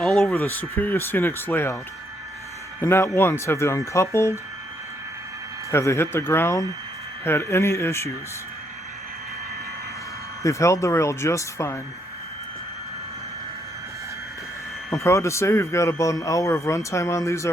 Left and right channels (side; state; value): both; normal; correlation 0.73